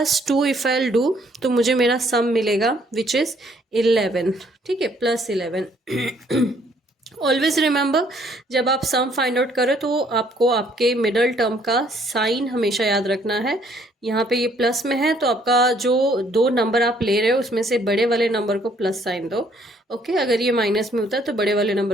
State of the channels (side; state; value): both; normal; correlation 0.65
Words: if I do, तो मुझे मेरा सम मिलेगा विच इज़ 11. ठीक है, +11. ऑलवेज रिमेंबर, जब आप सम फाइंड आउट करें तो आपको आपके मिडल टर्म का साइन हमेशा याद रखना है. यहाँ पे ये प्लस में है तो आपका जो दो नंबर आप ले रहे हो उसमें से बड़े वाले नंबर को प्लस साइन दो. ओके, अगर ये माइनस में होता है तो बड़े वाले